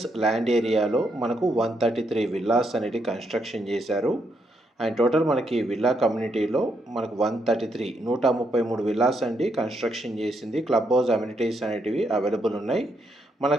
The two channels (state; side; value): normal; both; correlation 0.77